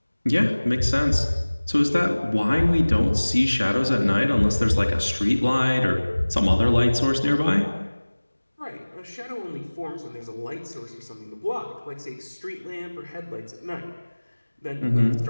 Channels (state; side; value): inverted; both; correlation -1.00